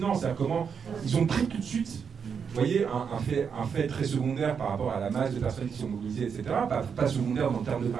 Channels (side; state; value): left; quieter; 6.6 dB